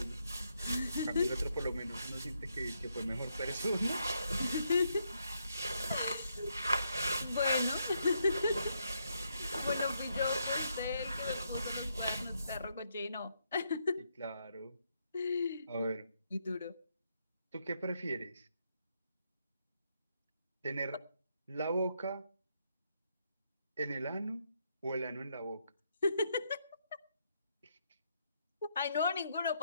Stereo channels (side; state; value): both; inverted; correlation -0.78